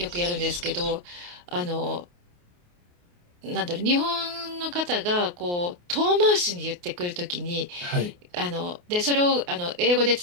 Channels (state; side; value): late; left; 28 ms